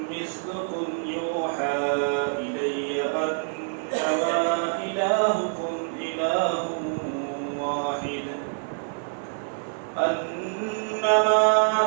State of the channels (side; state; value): left; silent; 61 dB below the other